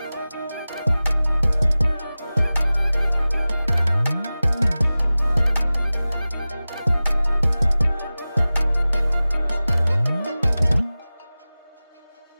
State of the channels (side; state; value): both; inverted; correlation -0.97